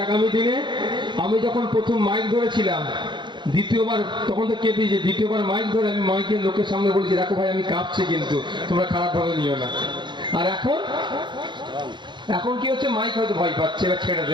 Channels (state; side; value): late; left; 0.22 ms